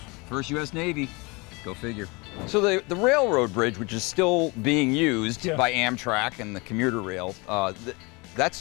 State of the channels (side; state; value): right; quieter; 26.9 dB